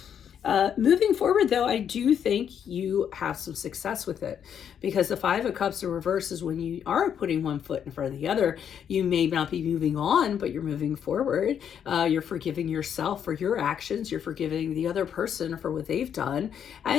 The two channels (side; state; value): right; quieter; 8.5 dB